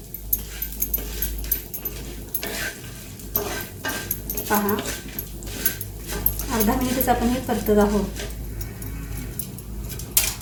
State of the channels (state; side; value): identical; both; correlation 1.00